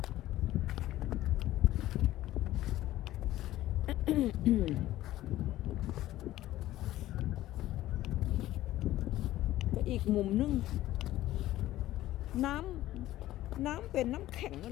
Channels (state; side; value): quieter; right; 14.9 dB